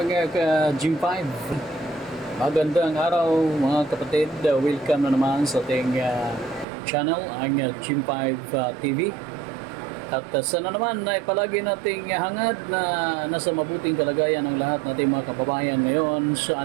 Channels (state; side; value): drops out; left; at 6.7 s